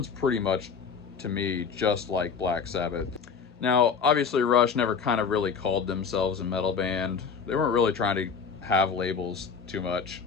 pretty much to me just like Black Sabbath. Now, obviously Rush never kind of really called themselves a metal band. They weren't really trying to have labels too much.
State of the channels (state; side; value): quieter; right; 5.9 dB